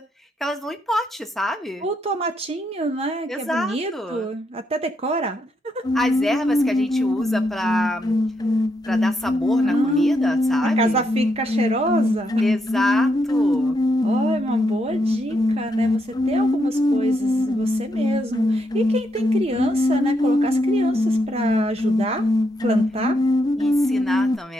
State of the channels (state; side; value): normal; both; correlation 0.79